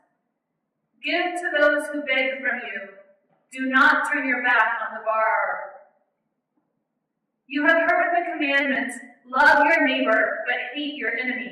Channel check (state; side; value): identical; both; correlation 1.00